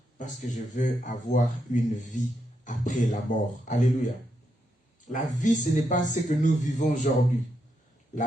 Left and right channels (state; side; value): normal; both; correlation 0.82